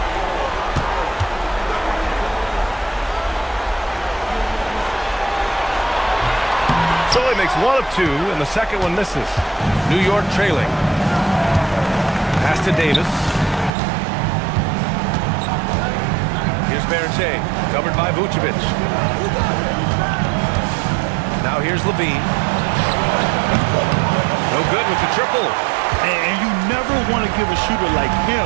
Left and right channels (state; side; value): drops out; left; at 13.7 s